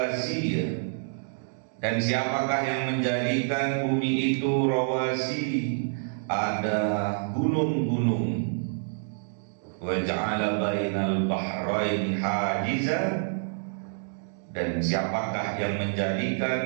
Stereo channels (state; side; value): silent; left; digital silence